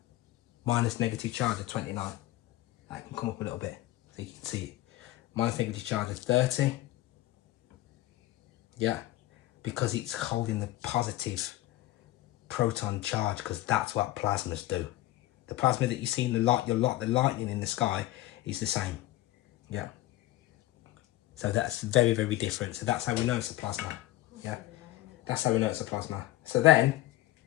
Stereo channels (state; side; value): quieter; right; 16.1 dB